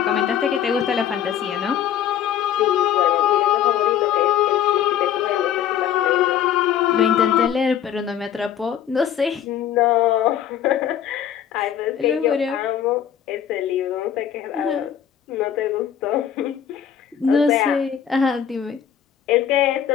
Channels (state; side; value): quieter; right; 9.5 dB